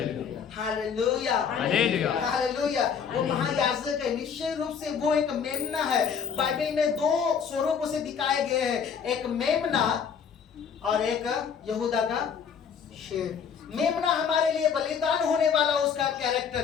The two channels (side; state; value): right; quieter; 7.0 dB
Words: hallelujah, hallelujah. वो महायाजक है, निश्चय रूप से वो एक मेमना है। बाइबल में दो स्वरूप उसे दिखाए गए हैं, एक मेमना और एक यहूदा का शेर। मेमना हमारे लिए बलिदान होने वाला उसका